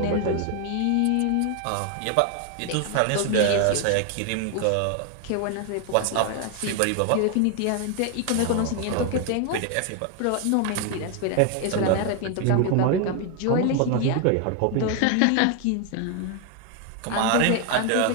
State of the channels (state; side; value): different; both; correlation 0.01